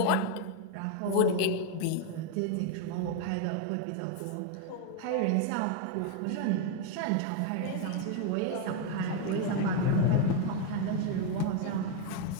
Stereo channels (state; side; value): different; both; correlation 0.01